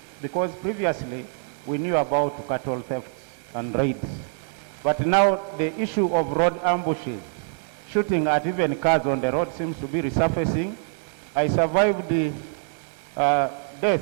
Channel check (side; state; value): left; silent; digital silence